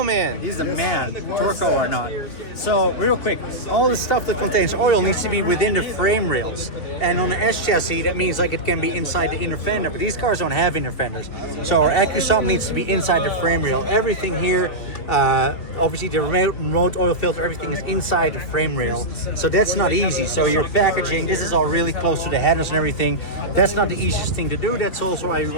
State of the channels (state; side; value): late; right; 3.4 ms